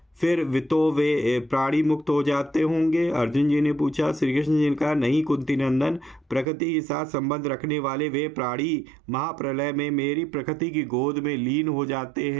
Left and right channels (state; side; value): drops out; left; at 6.5 s